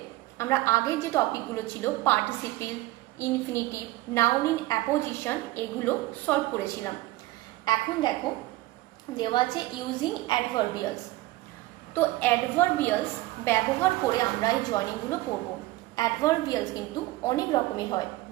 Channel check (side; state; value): left; quieter; 18.4 dB